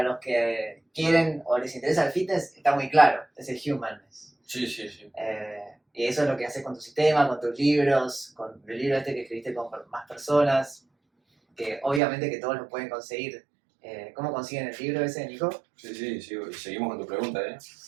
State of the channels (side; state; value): left; drops out; at 12.0 s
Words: los que quieren o les interesa el fitness está muy claro, es el humanness. Sí. Y eso es lo que haces con tu sistema, con tus libros, con el libro que escribiste con más personas, que obviamente que todos lo pueden conseguir. ¿Cómo consiguen el libro ese, Nico? Sí, y seguimos con tu pregunta, ¿eh?